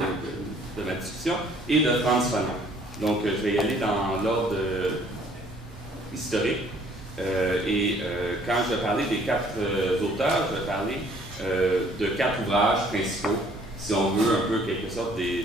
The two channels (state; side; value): normal; both; correlation 0.59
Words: de ma discussion, et de Frantz Fanon. Donc, je vais y aller dans l'ordre historique. Quand je vais parler des 4 auteurs, je vais parler de 4 ouvrages principaux, si on veut un peu quelque sorte des